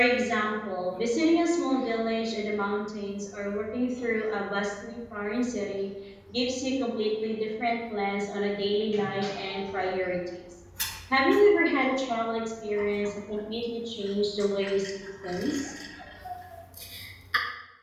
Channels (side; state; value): both; identical; correlation 1.00